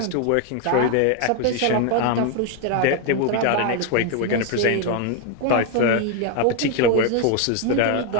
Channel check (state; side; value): different; both; correlation 0.01